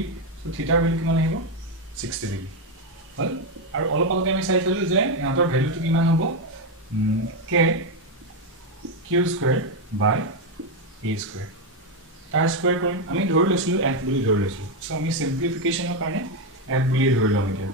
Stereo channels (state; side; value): normal; both; correlation 0.06